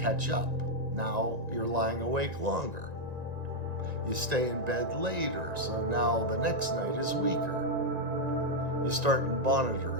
catch up. Now you're lying awake longer. You stay in bed later, so now the next night is weaker. You start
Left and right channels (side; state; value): left; late; 1.9 ms